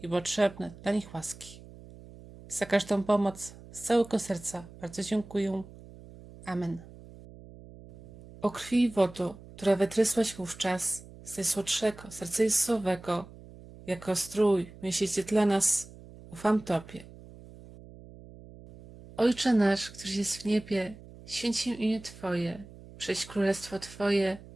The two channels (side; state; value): right; noise; hum, 19 dB below the sound